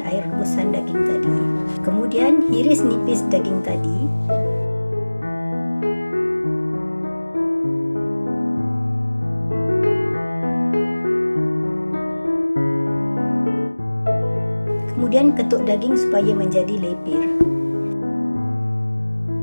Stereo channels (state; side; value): inverted; both; correlation -1.00